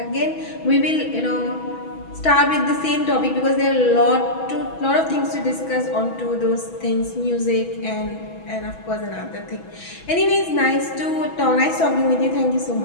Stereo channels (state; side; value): late; right; 6.1 ms